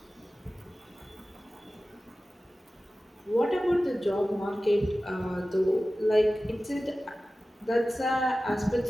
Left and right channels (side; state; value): both; normal; correlation 0.96